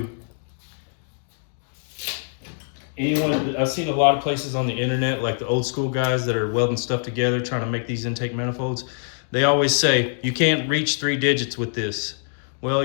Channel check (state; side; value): silent; right; digital silence